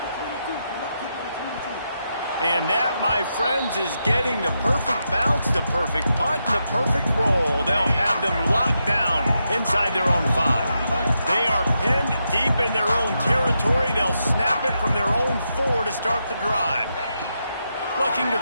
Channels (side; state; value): both; inverted; correlation -0.84